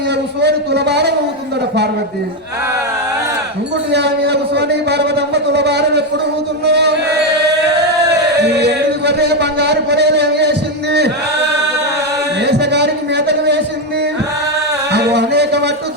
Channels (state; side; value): normal; both; correlation 0.06